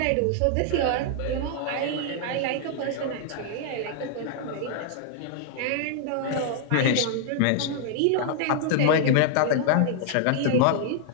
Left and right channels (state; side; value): different; both; correlation -0.01